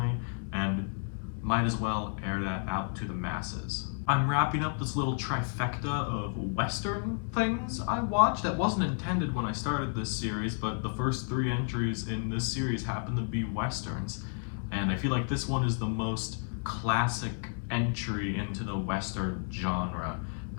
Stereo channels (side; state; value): right; silent; 57 dB below the other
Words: and might as well air that out to the masses. I'm wrapping up this little trifecta of Western things I watched that wasn't intended when I started this series, but the first three entries in this series happen to be Westerns. And I feel like this one is the most classic entry into the Western genre.